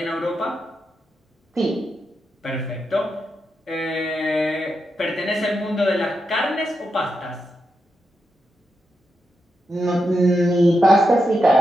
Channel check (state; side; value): normal; both; correlation 0.86